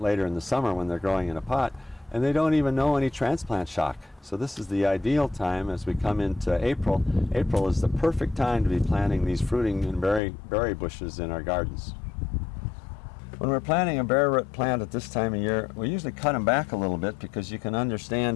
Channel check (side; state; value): right; drops out; at 10.2 s